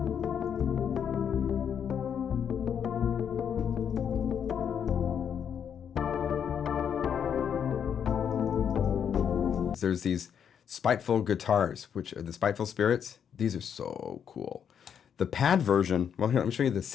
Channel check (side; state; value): right; quieter; 8.1 dB